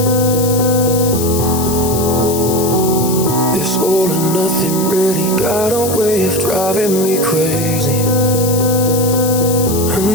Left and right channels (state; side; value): noise; left; hiss, 7 dB below the sound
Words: This all or nothing really got a way of driving me crazy. I